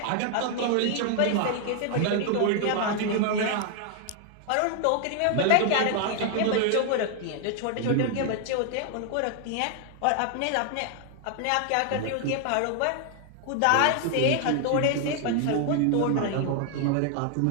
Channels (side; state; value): both; different; correlation 0.00